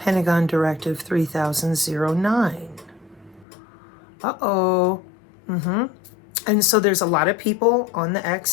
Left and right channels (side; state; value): right; drops out; at 3.5 s